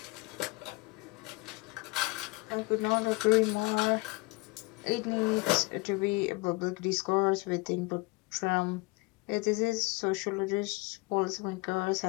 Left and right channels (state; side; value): quieter; right; 25.0 dB